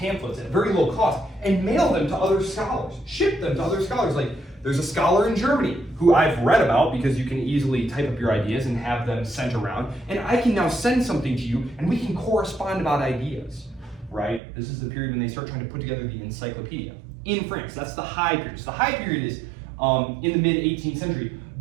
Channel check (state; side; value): drops out; left; at 14.4 s